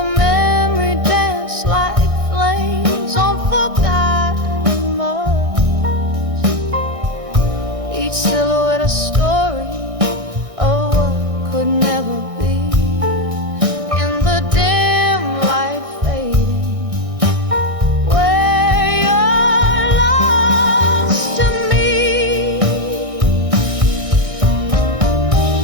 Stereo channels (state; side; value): late; left; 1.6 ms